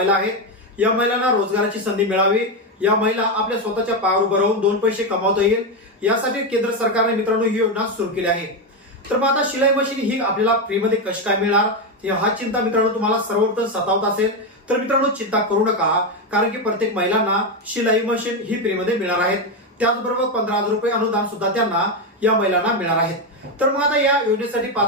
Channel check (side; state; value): both; normal; correlation 0.09